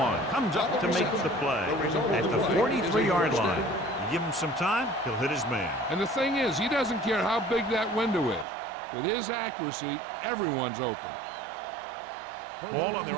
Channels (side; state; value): left; drops out; at 8.5 s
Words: comes up to make the play at the 43-yard line. You give him some time, he'll hit his man. And the thing is, he doesn't care how big that window is. With his accuracy, everyone's open. Ball on their